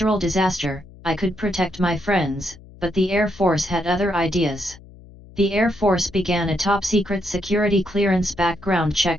disaster, I could protect my friends, but the Air Force had other ideas. The Air Force began a top-secret security clearance background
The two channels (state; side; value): noise; left; hum, 21 dB below the sound